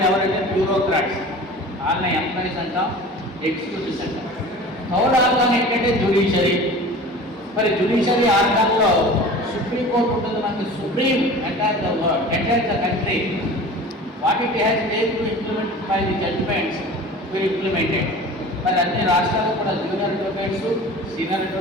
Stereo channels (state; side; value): normal; both; correlation 0.39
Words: ఎవరంటే బ్యూరోక్రాట్స్. వాళ్ళని ఎంప్లాయీస్ అంటాం, ఎగ్జిక్యూటివ్స్ అంటాం. థర్డ్ ఆర్గాన్ ఏంటంటే జ్యుడిషియరీ. మరి జ్యుడిషియరీ ఆర్గాన్లో సుప్రీంకోర్టు ఉంటుంది. మనకి supreme entire the world, entire the country. What it has made to implement by the judgments will implemented. మరి అన్ని రాష్ట్రాలు కూడా జూనియర్ అడ్వకేట్స్, సీనియర్